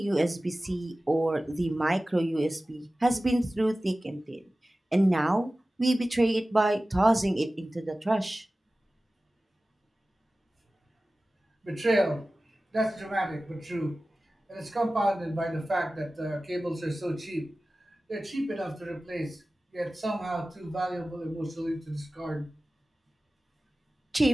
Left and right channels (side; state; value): both; normal; correlation 0.96